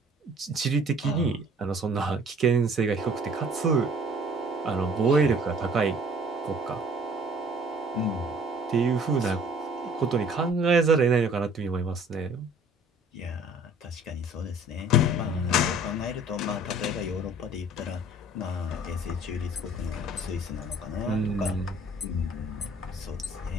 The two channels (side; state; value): both; normal; correlation 0.53